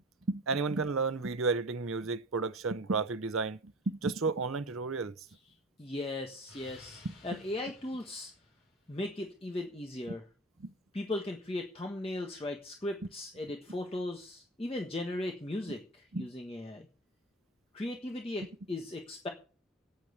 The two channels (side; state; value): both; normal; correlation 0.35